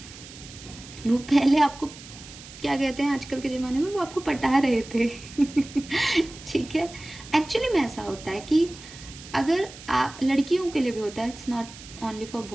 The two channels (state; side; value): noise; right; hiss, 17 dB below the sound